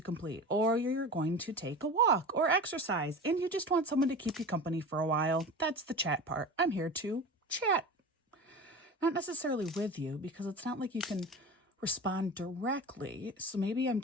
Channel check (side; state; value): both; normal; correlation 0.32